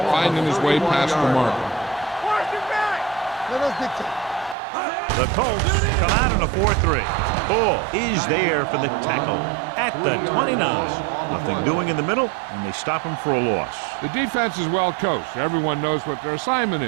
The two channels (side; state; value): left; drops out; at 4.5 s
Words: finding his way past the marker. Watch it back. Let us dictate. The Colts come out in a 4-3. Ball is there for the tackle at the 29. Nothing doing in the middle, and they stop him for a loss. The defense is well coached. Everyone knows what their assignment